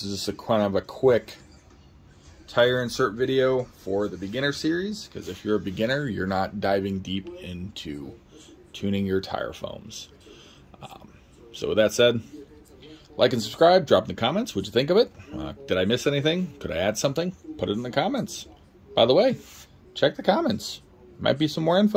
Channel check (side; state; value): both; identical; correlation 1.00